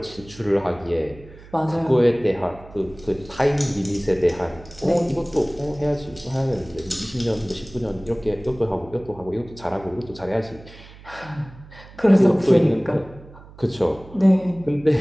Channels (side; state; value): right; noise; hum, 20 dB below the sound